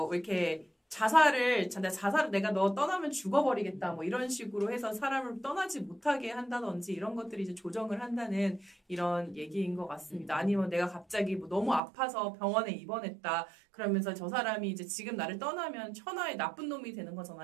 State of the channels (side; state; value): left; drops out; at 11.8 s